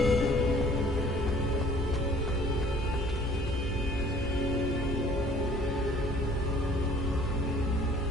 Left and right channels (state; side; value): normal; both; correlation 0.54